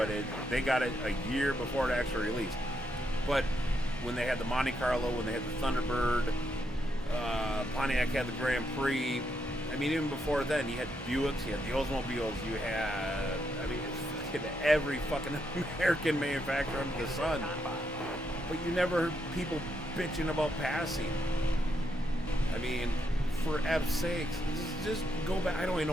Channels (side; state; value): both; normal; correlation 0.79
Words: they got it a year before it actually released. But when they had the Monte Carlo, when they had the Thunderbird, Pontiac had the Grand Prix. I mean, even before then, you had Buicks, you had the Oldsmobiles, you had, every fucking American manufacturer under the sun. But you never heard people bitching about passing. I mean, for F's sakes, just go back. I don't even